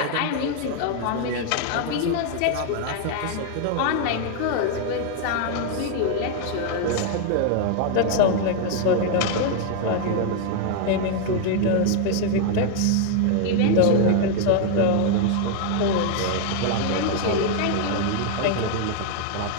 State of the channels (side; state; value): both; different; correlation 0.00